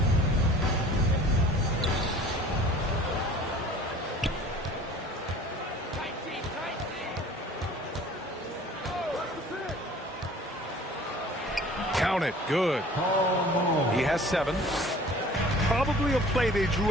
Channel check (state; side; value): normal; both; correlation 0.48